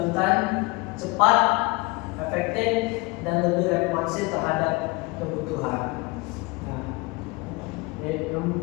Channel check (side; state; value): right; quieter; 25.4 dB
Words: cepat, efektif, dan lebih responsif terhadap kebutuhan. Nah,